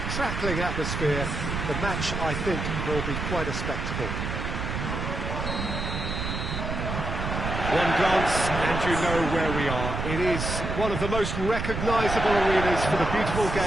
crackling atmosphere. The match, I think, will be quite a spectacle. One glance and you know where we are. It is one of the most recognisable arenas for the beautiful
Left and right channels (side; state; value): right; noise; rumble, 3 dB below the sound